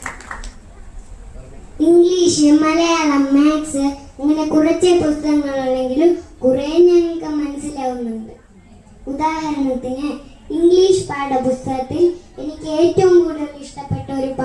ഇംഗ്ലീഷ്, മലയാളം, മാത്സ് അങ്ങനെ കുറച്ച് പുസ്തകങ്ങളുണ്ടെങ്കിലും കുറേ ഞങ്ങൾക്ക് മനസ്സിലാവുന്നുണ്ട്. ഉദാഹരണത്തിന് ഇംഗ്ലീഷ് പാഠപുസ്തകത്തിൽ എനിക്ക് ഏറ്റവും കൂടുതൽ ഇഷ്ടപ്പെട്ട ഒരു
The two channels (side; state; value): both; identical; correlation 1.00